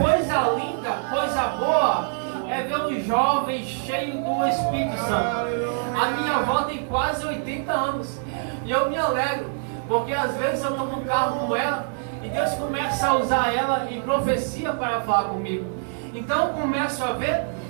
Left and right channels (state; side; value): silent; left; digital silence